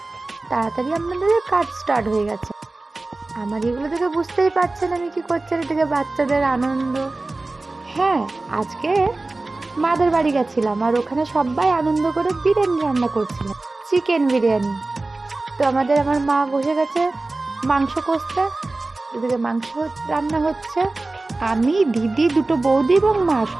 তাড়াতাড়ি আমাদের কাজ স্টার্ট হয়ে গেছে। আমার এগুলো দেখে বুঝতেই পারছেন আমি কি করছি, এদিকে বাচ্চাদের আনন্দ। হ্যাঁ, আজকে মাদের বাড়ি গেছিলাম আর ওখানে সবাই আনন্দ করে বিরিয়ানি রান্না করছিলাম, চিকেন বিরিয়ানি। তো আমার মা বসে গেছে মাংস কষতে, এদিকে মাংস রান্না হচ্ছে। আমি, দিদি, দুটো বৌদি এবং মা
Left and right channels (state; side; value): quieter; left; 3.2 dB